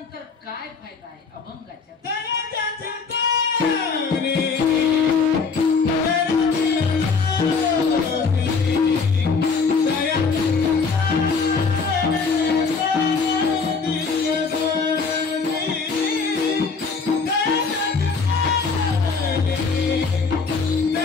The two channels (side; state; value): right; quieter; 4.9 dB